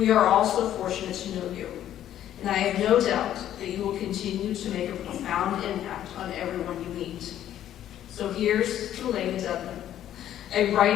are also fortunate to know you, and I have no doubt that you will continue to make a profound impact on everyone you meet. So here's to Elena Dudley, a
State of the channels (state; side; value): quieter; right; 11.5 dB